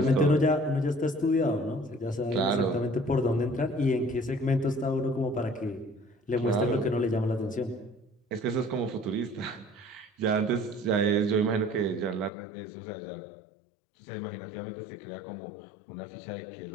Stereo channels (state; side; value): drops out; right; at 12.3 s